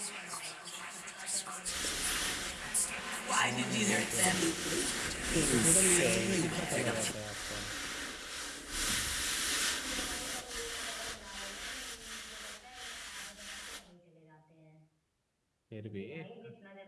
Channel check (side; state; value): both; identical; correlation 1.00